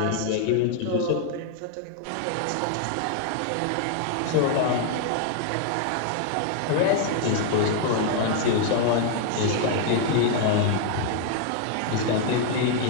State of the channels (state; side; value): different; both; correlation 0.00